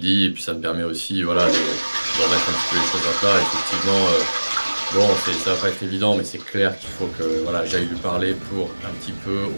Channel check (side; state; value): both; inverted; correlation -1.00